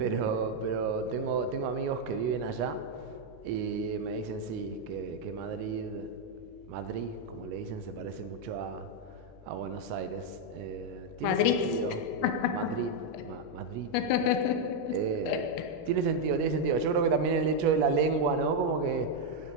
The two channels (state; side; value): normal; both; correlation 0.01